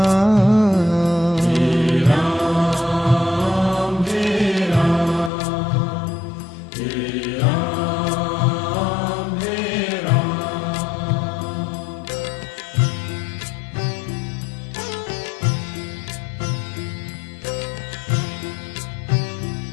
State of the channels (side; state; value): right; drops out; at 5.3 s